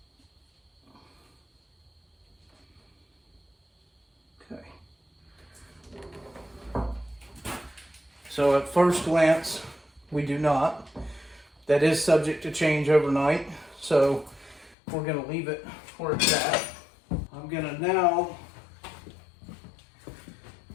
Okay. So at first glance, we do not. That is subject to change overnight. So we're going to leave it where it's at. I'm going to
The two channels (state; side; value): drops out; right; at 14.8 s